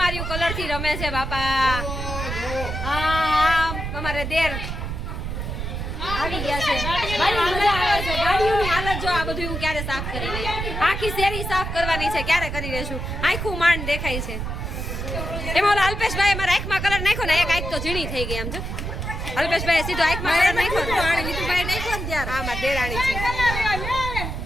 કલર થી રમે છે બાપા અમારે દેર આવી ગયા છે મજા આવે છે ગાડીઓની હાલત જો આ બધું હું ક્યારે સાફ કરી લઈ આખી શેરી સાફ કરવાની છે ક્યારે કરી લેશું આખું માંડ દેખાય છે એમાં ઓલા અલ્પેશભાઈ મારા આંખમાં કલર નાખ્યો ને એક આંખ તો ઝીણી થઈ ગઈ આમ જો અલ્પેશભાઈ સીધો આંખમાં કલર નાખ્યો નીતુભાઈ નાખ્યો ને ત્યારે હા મારી દેરાણી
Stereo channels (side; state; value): right; noise; rumble, 4 dB below the sound